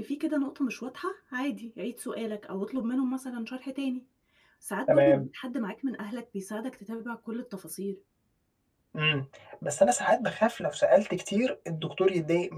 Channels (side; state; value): both; identical; correlation 1.00